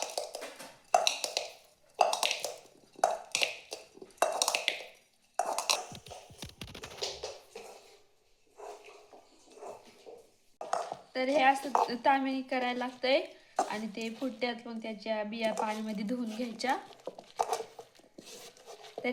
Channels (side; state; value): both; identical; correlation 1.00